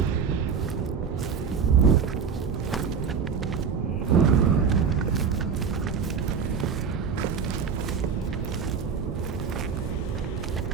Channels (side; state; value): left; quieter; 6.2 dB